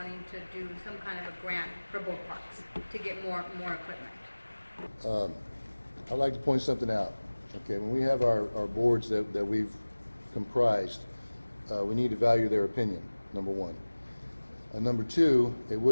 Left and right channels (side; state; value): both; inverted; correlation -1.00